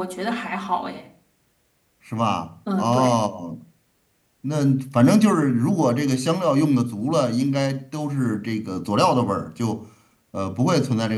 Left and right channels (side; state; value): both; identical; correlation 1.00